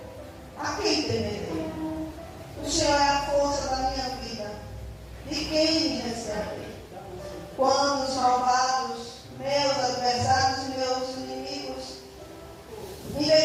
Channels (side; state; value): both; identical; correlation 1.00